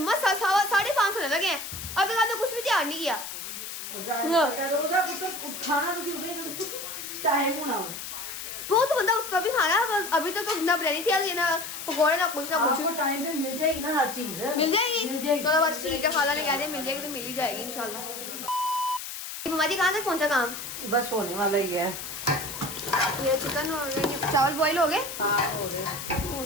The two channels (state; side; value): noise; left; hiss, 8 dB below the sound